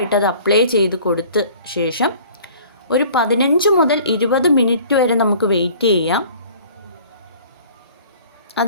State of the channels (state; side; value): inverted; both; correlation -0.49